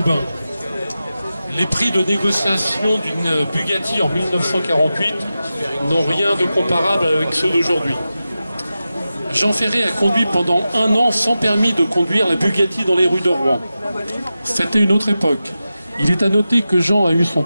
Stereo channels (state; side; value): inverted; both; correlation -0.93